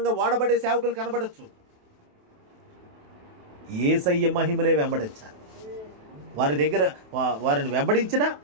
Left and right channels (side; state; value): left; late; 28 ms